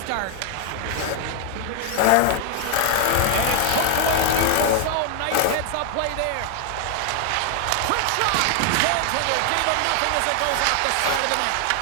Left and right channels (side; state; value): both; different; correlation 0.00